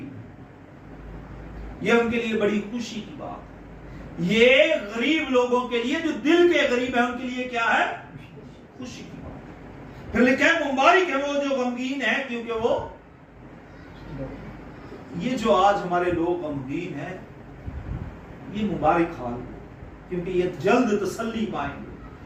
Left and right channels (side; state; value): both; identical; correlation 1.00